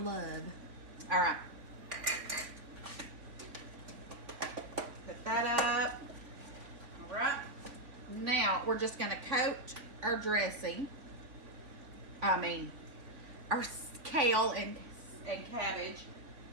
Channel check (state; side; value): late; left; 3.8 ms